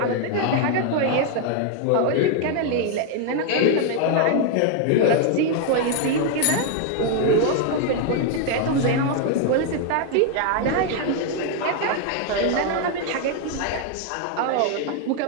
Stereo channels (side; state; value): both; different; correlation 0.00